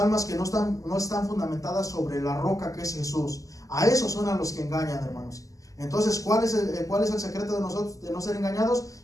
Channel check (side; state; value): right; late; 0.17 ms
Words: que no están fundamentadas sobre la roca que es Jesús. A esos son a los que engañan, hermanos. Entonces, ¿cuál es el secreto de nosotros de no ser engañados?